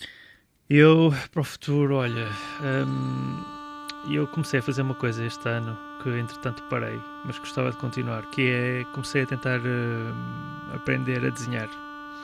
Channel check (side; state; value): both; identical; correlation 1.00